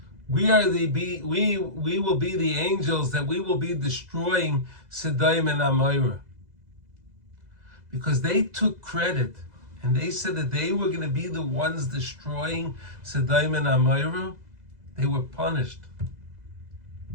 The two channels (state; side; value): late; left; 2.0 ms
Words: We will be the angels that we will be destroying Sodom and Amorah. Because they took credit and they said that they were going to be the ones destroying Sodom and Amorah. They were punished